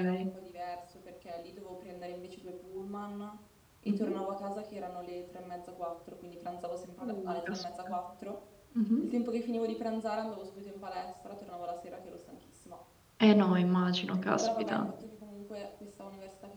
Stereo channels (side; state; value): both; identical; correlation 1.00